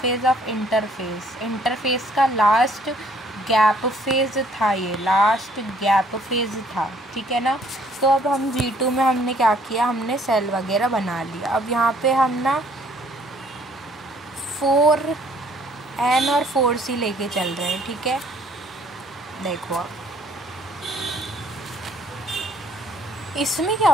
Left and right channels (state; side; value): normal; both; correlation 0.61